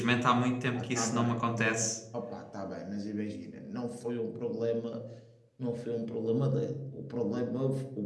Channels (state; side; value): identical; both; correlation 1.00